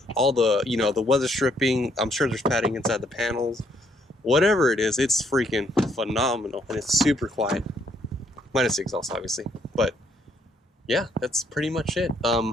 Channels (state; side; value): normal; both; correlation 0.70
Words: you know, the weather stripping. I'm sure there's padding inside the panels. Whatever it is, it's freaking phenomenal, and it's super quiet. Minus the exhaust, obviously. But yeah, that's pretty much it.